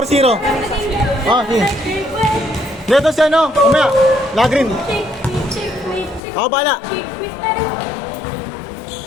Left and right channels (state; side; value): drops out; right; at 6.2 s